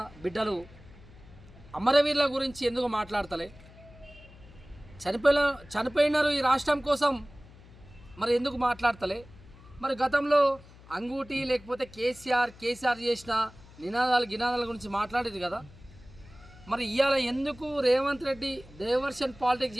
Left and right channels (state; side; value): noise; left; hum, 21 dB below the sound